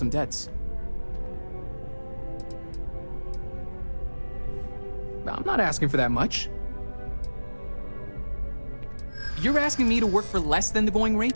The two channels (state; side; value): inverted; both; correlation -1.00